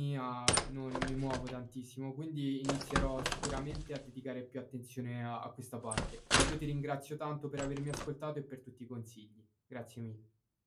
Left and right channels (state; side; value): identical; both; correlation 1.00